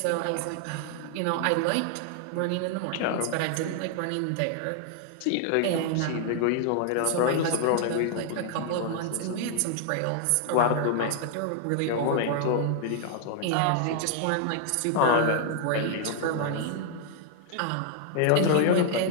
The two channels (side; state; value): both; different; correlation 0.00